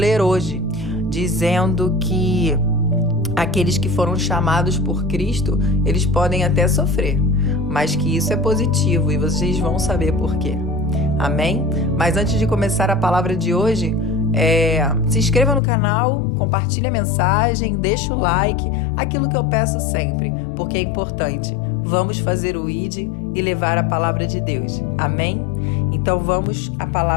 hoje, dizendo que aqueles que foram chamados por Cristo, eles podem até sofrer, mas que isso é positivo e vocês vão saber por quê. Amém? Mas antes de começar a palavra de hoje, se inscreva no canal, compartilhe a mensagem, deixa o like, aquilo que eu peço sempre, porque é importante. Vamos fazer o ID e levar a palavra de Deus. Amém? Então vamos à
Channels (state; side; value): drops out; right; at 15.6 s